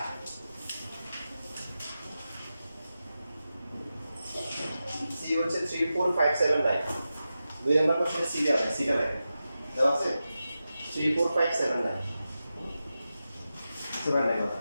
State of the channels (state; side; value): inverted; both; correlation -0.92